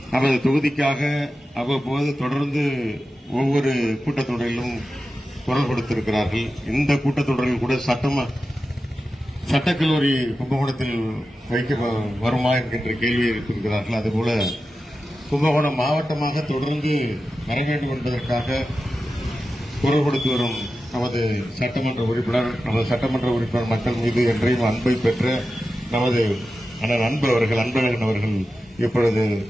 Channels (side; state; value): both; normal; correlation 0.93